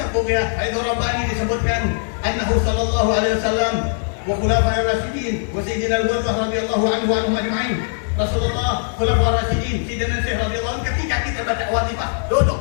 Bughiyah Haidar Rabbani disebutkan annahu sallallahu alaihi wasallam wa khulafa'ir rasyidin wa sayyidina al-Ghurrah radhiyallahu anhu wa anhum ajma'in. Rasulullah, khulafa'ir rasyidin, sayyidina Syekh radhiyallahu anhu, ketika kita baca watifah, duduk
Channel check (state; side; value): silent; right; digital silence